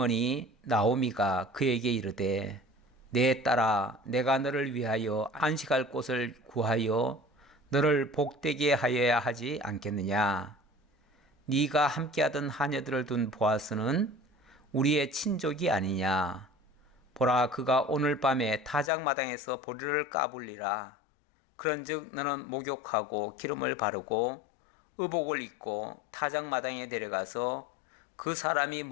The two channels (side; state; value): right; drops out; at 18.9 s